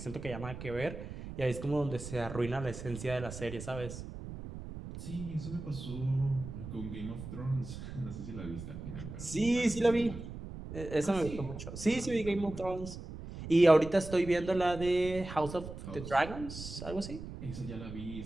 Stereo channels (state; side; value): noise; right; rumble, 10 dB below the sound